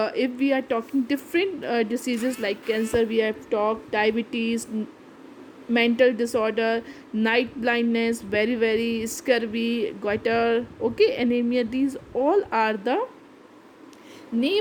if we are talking different diseases like cancer, we have talked diabetes, mental disorder, night blindness, very scurvy, goiter, okay, anemia, these all are the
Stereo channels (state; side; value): identical; both; correlation 1.00